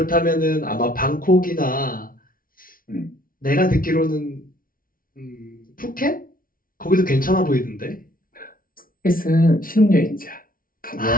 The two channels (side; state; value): right; late; 0.42 ms